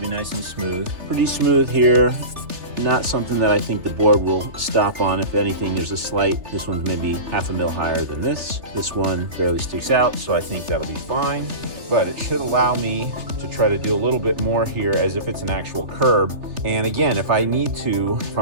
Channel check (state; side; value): late; left; 3.3 ms